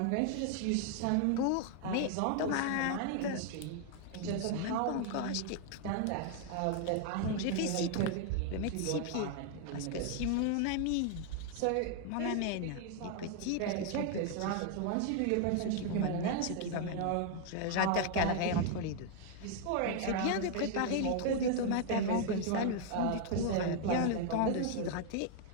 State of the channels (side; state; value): both; different; correlation 0.00